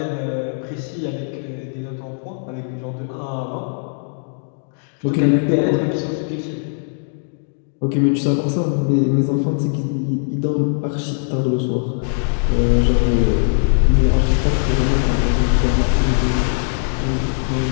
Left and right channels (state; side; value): silent; right; digital silence